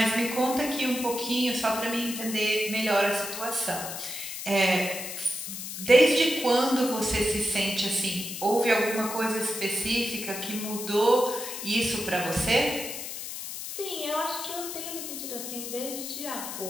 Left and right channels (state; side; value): noise; left; hiss, 7 dB below the sound